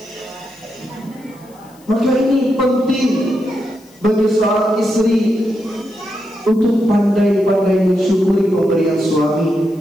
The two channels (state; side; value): noise; left; hiss, 29 dB below the sound